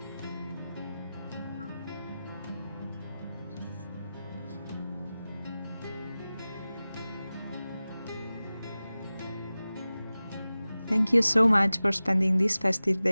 Thank you so much for spending this festive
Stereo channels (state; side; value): inverted; both; correlation -0.96